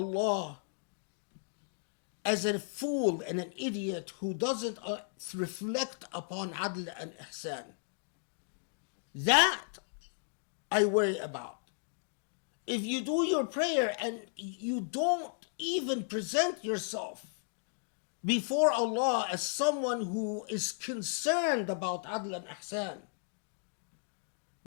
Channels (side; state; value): right; silent; digital silence